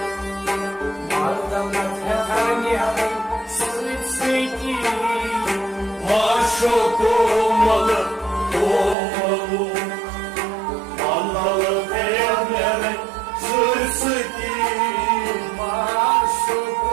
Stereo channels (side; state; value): left; drops out; at 9.0 s